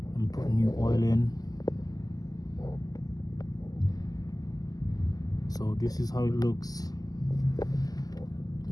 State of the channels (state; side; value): late; right; 0.18 ms